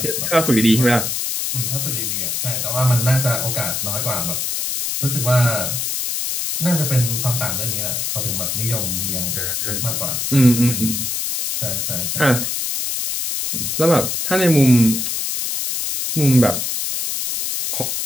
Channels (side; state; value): left; noise; hiss, 1 dB below the sound